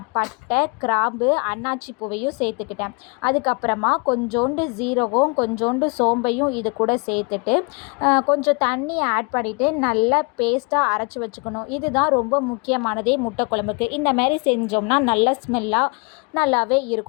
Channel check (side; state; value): right; quieter; 32.2 dB